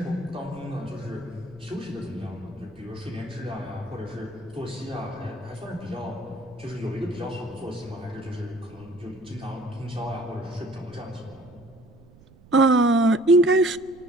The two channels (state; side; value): noise; right; rumble, 23 dB below the sound